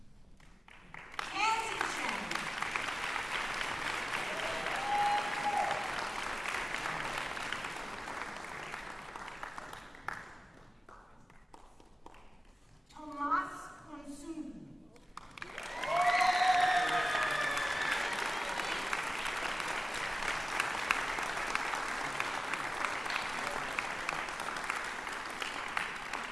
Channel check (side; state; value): both; normal; correlation 0.97